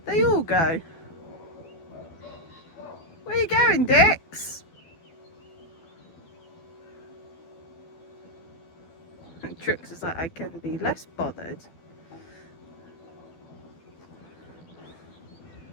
They all go. Where are you going, Dix? And Trix is like, I can be less bothered.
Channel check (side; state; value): right; late; 12 ms